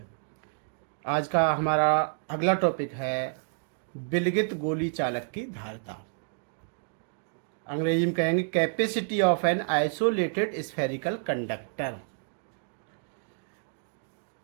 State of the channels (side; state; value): left; silent; digital silence